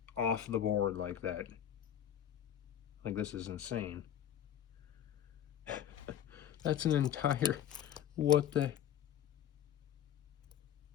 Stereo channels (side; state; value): right; quieter; 10.3 dB